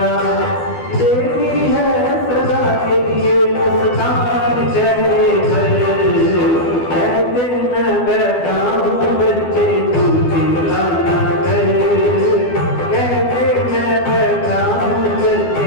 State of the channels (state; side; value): late; right; 12 ms